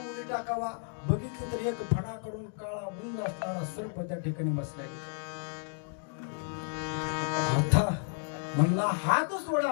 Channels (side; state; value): right; silent; 56 dB below the other